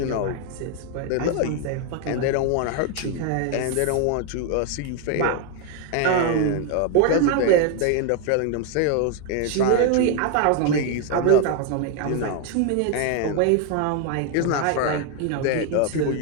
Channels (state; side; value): different; both; correlation 0.01